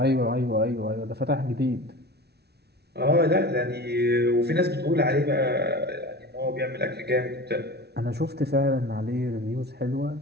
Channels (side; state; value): left; late; 0.48 ms